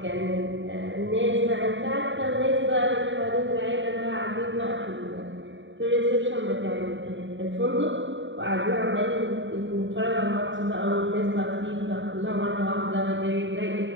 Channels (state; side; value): late; left; 0.54 ms